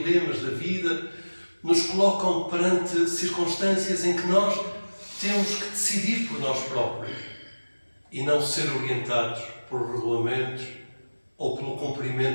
da vida nos colocam perante circunstâncias em que nós temos que decidir por nós próprios e não ser orientados por regulamentos ou pelo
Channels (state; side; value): inverted; both; correlation -1.00